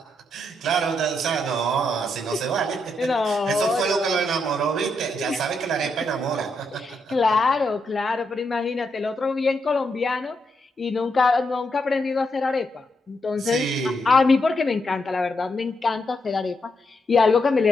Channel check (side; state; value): both; normal; correlation 0.81